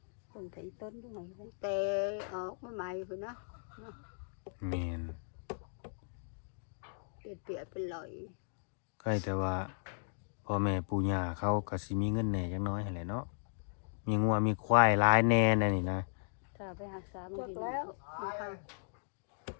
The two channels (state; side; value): silent; right; digital silence